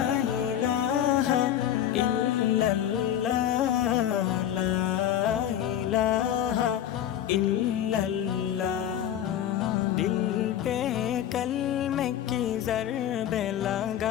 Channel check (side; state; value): right; quieter; 10.8 dB